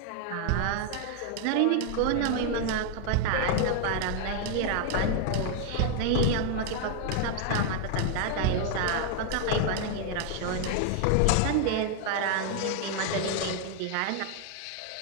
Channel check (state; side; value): different; both; correlation 0.00